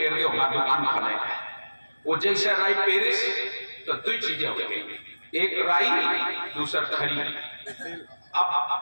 दो, हमारी दुकान खाने। वो जैसे राई पेरिस तो दो चीजें हो गई, एक राई दूसरा खरी। अब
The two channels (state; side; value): inverted; both; correlation -1.00